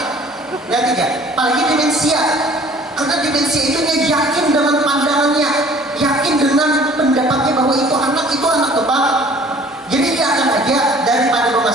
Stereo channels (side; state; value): both; normal; correlation 0.52